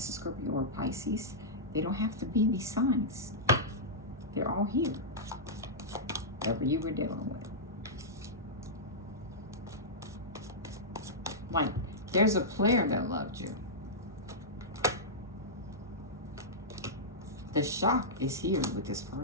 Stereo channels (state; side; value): normal; both; correlation -0.12